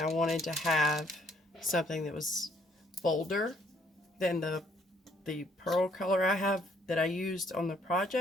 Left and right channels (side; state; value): both; normal; correlation 0.66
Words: wanted to have something that was bolder than the pearl color I have that I used on the